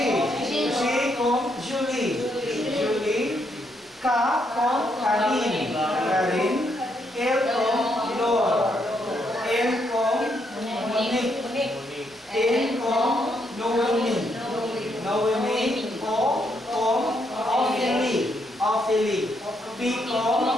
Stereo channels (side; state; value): both; normal; correlation 0.76